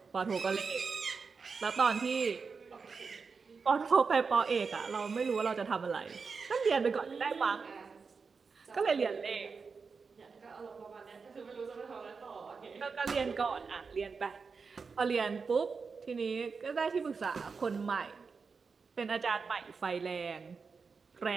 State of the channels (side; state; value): left; quieter; 5.1 dB